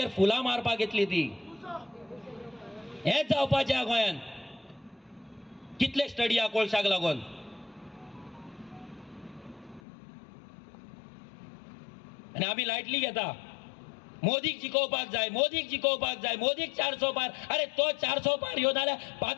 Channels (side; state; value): right; drops out; at 9.8 s